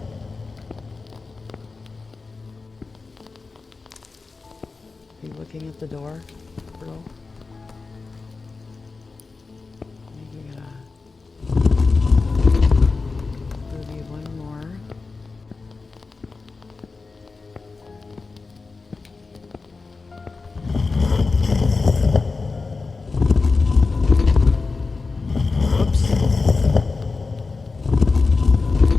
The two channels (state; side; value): quieter; right; 4.1 dB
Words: Are you looking at the door, girl? Maybe one more.